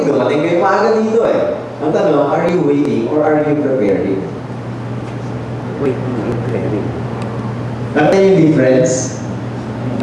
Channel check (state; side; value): identical; both; correlation 1.00